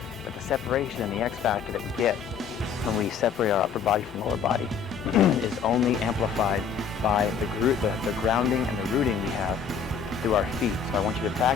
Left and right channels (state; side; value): quieter; right; 6.5 dB